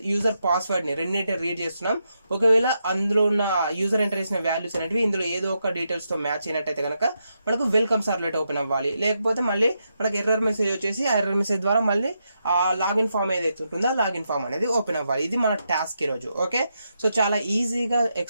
యూజర్ పాస్వర్డ్ని రెండింటి రీడ్ చేస్తున్నాం. ఒకవేళ అందులో ఉన్న యూజర్ ఎంటర్ చేసిన వాల్యూస్ అనేవి ఇందులో ఏదో ఒక డీటెయిల్స్తో మ్యాచ్ అయినట్టయితే కనుక మనకు వెల్కమ్ సర్వ్లెట్ ఓపెన్ అవ్వాలి. లేకపోతే మళ్ళీ మనకు ఎర్రర్ మెసేజ్ వచ్చేసి ఆ ఎర్రర్ మెసేజ్ ద్వారా మళ్ళీ ఆ లాగిన్ ఫామ్ ఏదైతే ఉంటుందో ఆ లాగిన్ ఫామ్ అనేది ఓపెన్ అవ్వాలి. ఇది మన టాస్క్ ఈరోజు. ఓకే. సో చాలా ఈజీగా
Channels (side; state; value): both; inverted; correlation -0.83